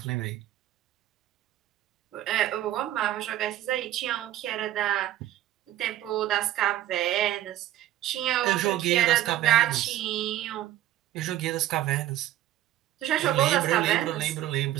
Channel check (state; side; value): quieter; left; 13.6 dB